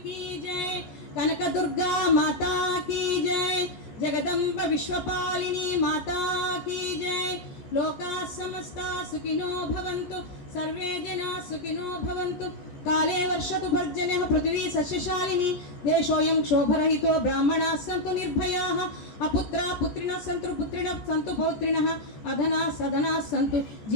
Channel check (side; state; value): right; late; 14 ms